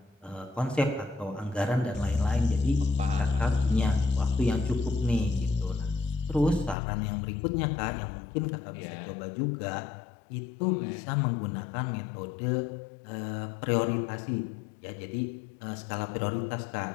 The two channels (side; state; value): right; drops out; at 6.8 s